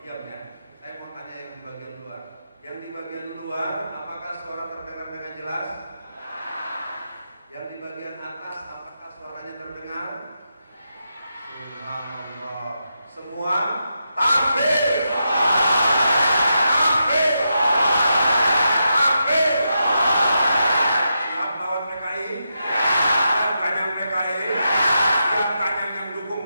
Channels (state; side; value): inverted; both; correlation -0.85